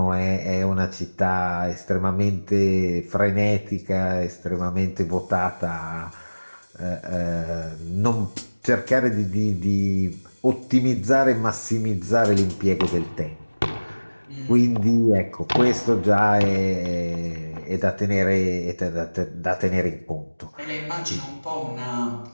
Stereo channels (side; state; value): both; inverted; correlation -1.00